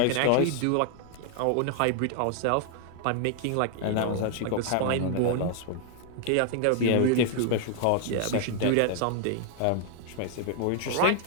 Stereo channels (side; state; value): both; different; correlation 0.00